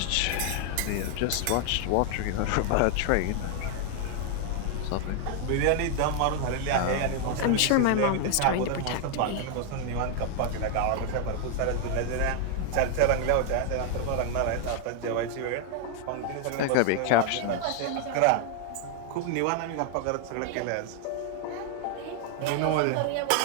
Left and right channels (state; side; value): different; both; correlation 0.00